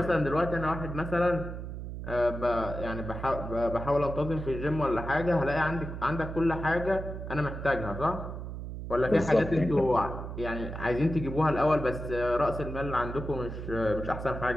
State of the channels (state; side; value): noise; right; hum, 7 dB below the sound